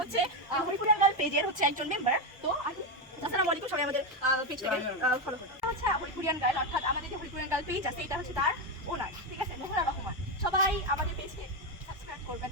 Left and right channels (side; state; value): both; normal; correlation 0.09